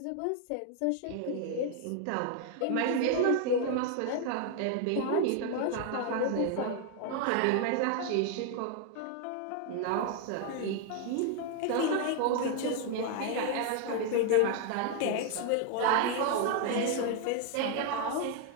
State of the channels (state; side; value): different; both; correlation 0.00